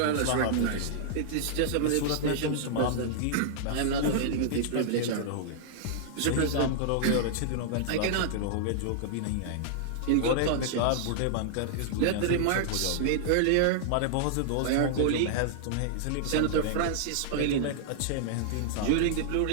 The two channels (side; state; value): both; different; correlation -0.01